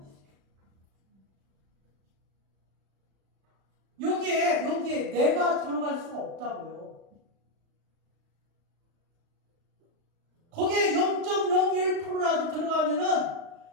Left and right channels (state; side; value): late; left; 36 ms